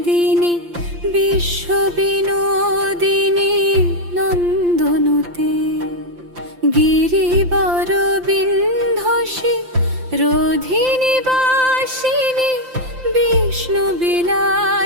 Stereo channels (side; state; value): left; late; 5.8 ms